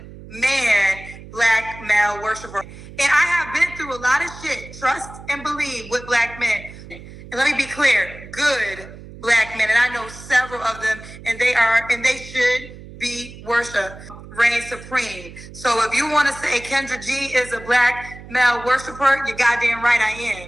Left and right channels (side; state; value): right; noise; hum, 16 dB below the sound